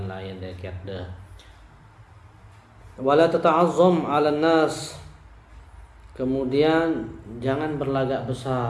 lain deket deh. Wala tata'azzam 'alan nas, kemudian jangan berlagak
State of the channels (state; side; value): identical; both; correlation 1.00